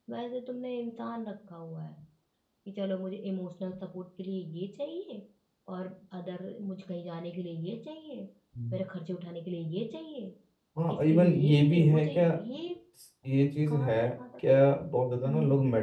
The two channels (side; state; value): both; identical; correlation 1.00